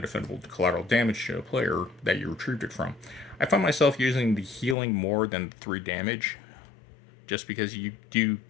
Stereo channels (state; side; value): drops out; right; at 4.8 s